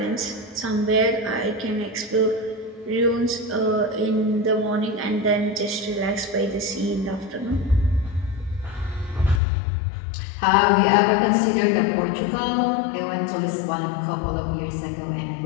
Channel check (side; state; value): right; drops out; at 9.4 s